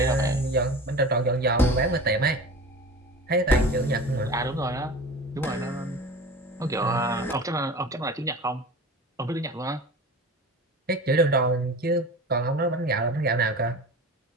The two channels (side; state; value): both; normal; correlation 0.35